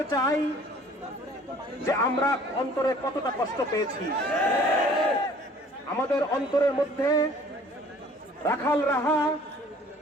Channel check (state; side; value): normal; both; correlation 0.53